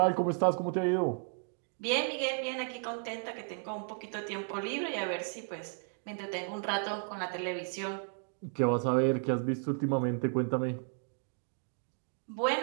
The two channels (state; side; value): silent; left; 55 dB below the other